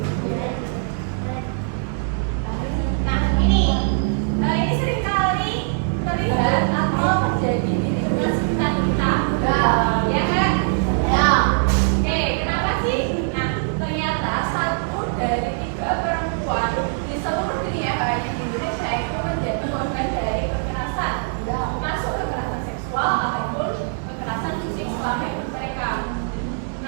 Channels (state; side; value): silent; left; 64 dB below the other